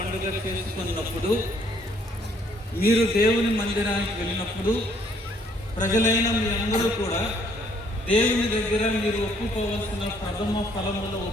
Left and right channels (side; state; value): both; normal; correlation 0.65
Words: చేసుకున్నప్పుడు, మీరు దేవుని మందిరానికి వెళ్ళినప్పుడు ప్రజలైన మీ అందరూ కూడా దేవుని దగ్గర మీరు ఒప్పుకోవాల్సిన ప్రథమ ఫలముల